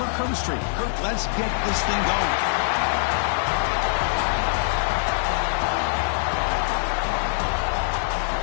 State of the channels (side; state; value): right; silent; digital silence